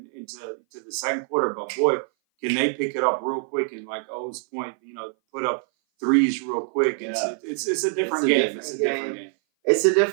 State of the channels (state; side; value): silent; left; 58 dB below the other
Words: into the second quarter, but boy. Can they pick it up real quick and, like O's point, put up threes real quick? It's a different game. It's a different game. It's a